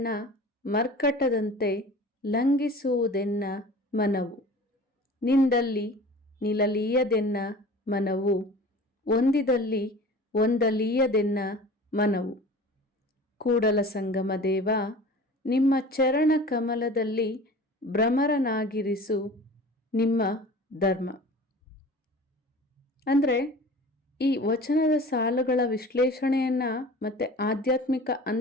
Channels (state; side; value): normal; both; correlation 0.41